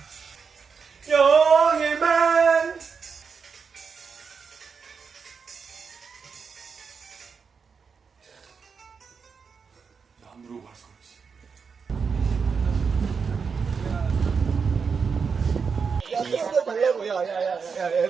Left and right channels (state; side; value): quieter; left; 5.7 dB